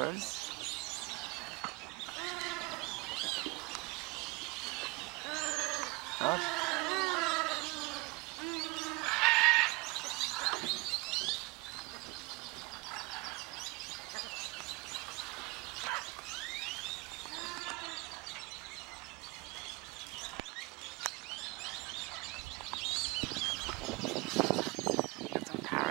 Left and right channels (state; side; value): quieter; left; 25.3 dB